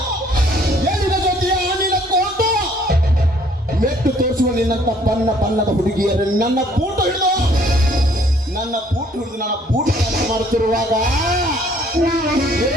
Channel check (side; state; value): both; normal; correlation 0.61